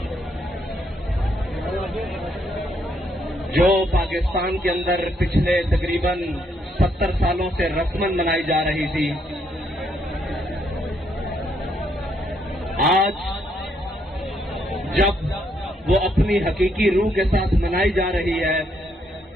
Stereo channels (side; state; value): both; normal; correlation 0.74